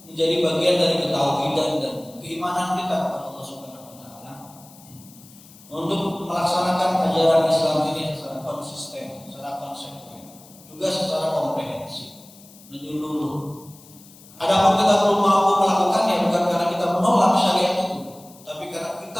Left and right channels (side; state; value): left; noise; hiss, 23 dB below the sound